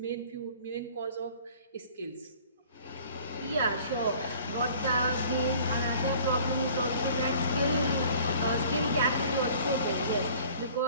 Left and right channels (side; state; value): both; inverted; correlation -0.50